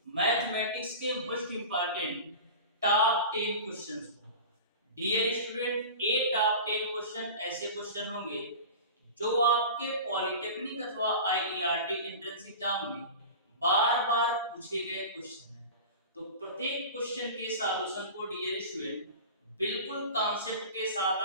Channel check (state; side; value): inverted; both; correlation -0.33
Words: मैथमेटिक्स के मोस्ट इंपॉर्टेंट टॉप 10 क्वेश्चंस को। डियर स्टूडेंट, ये टॉप 10 क्वेश्चन ऐसे क्वेश्चन होंगे जो आपके पॉलिटेक्निक अथवा आईईआरटी एंट्रेंस एग्जाम में बार बार पूछे गए क्वेश्चन हैं। तो प्रत्येक क्वेश्चन के सॉल्यूशन को डियर स्टूडेंट बिल्कुल कॉन्सेप्ट के